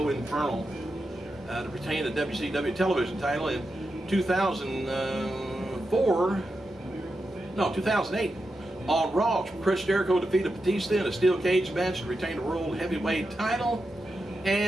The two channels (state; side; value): normal; both; correlation 0.88